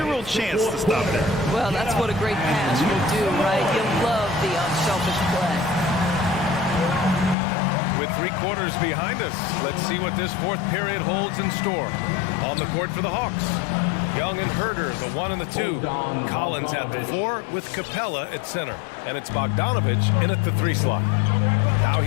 chance to stop that. Well, that's what a great pass will do, right? You love the unselfish play. With 3 quarters behind us, let's see what this 4th period holds in store. On the court for the Hawks, Young and Herder, the 1 and the 2. Collins at the 4 with Capella at center. And it's Bogdanovich in at the 3 slot. Now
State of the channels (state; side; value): drops out; right; at 7.4 s